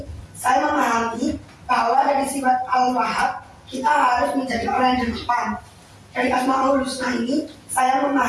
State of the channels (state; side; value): identical; both; correlation 1.00